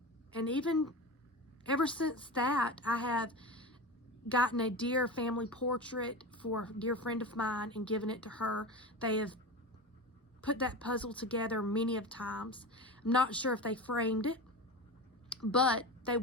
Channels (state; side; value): normal; both; correlation 0.27